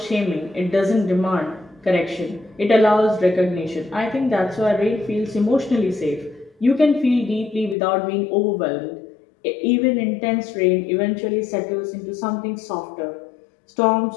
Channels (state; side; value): drops out; right; at 7.8 s